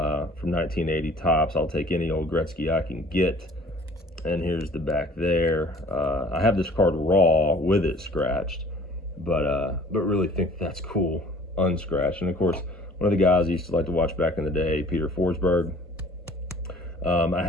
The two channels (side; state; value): both; normal; correlation 0.51